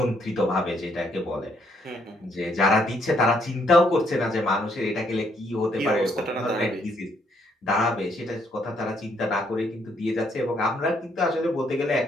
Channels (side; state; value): both; normal; correlation 0.71